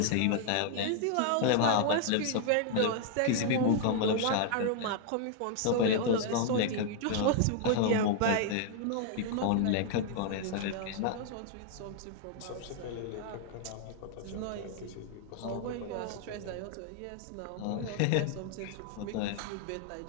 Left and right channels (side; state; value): both; different; correlation 0.00